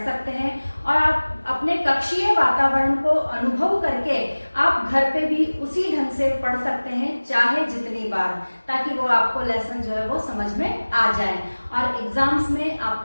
सकते हैं। और आप अपने कक्षीय वातावरण को अनुभव करके आप घर पे भी उसी ढंग से पढ़ सकते हैं, चाहे जितनी बार, ताकि वो आपको लेसन जो है वो समझ में आ जाए और एग्जाम्स में आप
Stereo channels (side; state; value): both; inverted; correlation -1.00